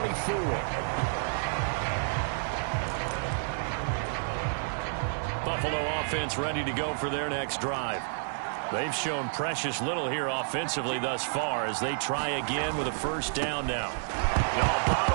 Buffalo offense ready to go for their next drive. They've shown precious little here offensively thus far as they try again with a 1st down now. No,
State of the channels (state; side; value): silent; left; 58 dB below the other